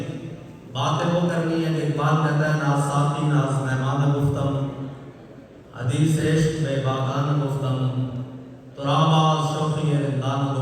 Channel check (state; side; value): identical; both; correlation 1.00